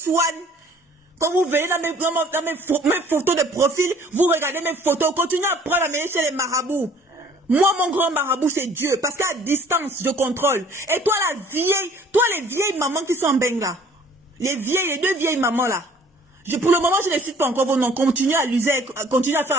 Quand vous venez dans mes photos de profil, vous regardez mes photos. Continuez à prendre la mêler chez les marabouts. Moi, mon grand marabout, c'est Dieu. Parce qu'à distance, je contrôle. Et toi, les vieilles mamans qui sont en benga. Les deux vieilles mamans là. Pour le moment, je ne cite pas encore vos noms. Continuez à faire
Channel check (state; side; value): normal; both; correlation 0.54